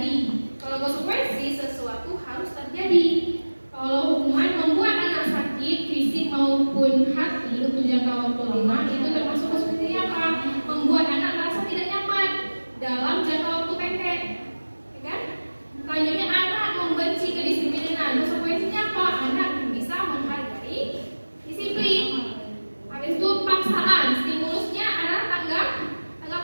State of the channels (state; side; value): inverted; both; correlation -1.00